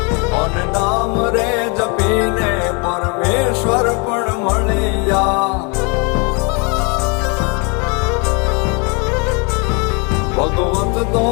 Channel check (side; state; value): right; quieter; 32.9 dB